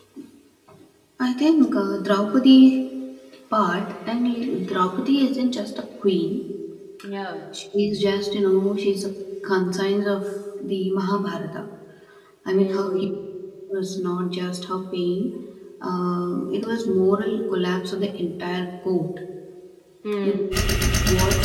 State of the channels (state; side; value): identical; both; correlation 1.00